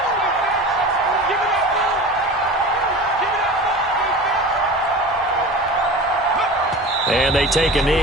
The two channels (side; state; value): both; normal; correlation 0.34